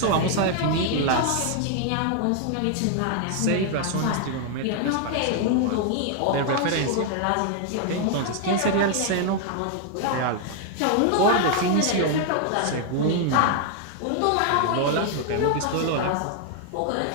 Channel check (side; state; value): both; different; correlation 0.00